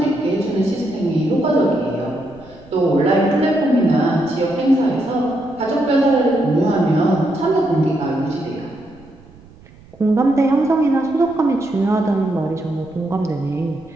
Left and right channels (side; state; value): right; noise; rumble, 24 dB below the sound